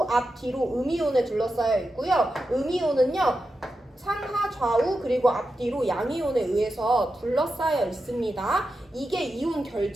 앞뒤로 음이온에 둘러싸여 있고요. 음이온은요. 상하 좌우 그리고 앞뒤로 양이온에 의해서 둘러싸여 있습니다. 이게 이온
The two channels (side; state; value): both; normal; correlation 0.90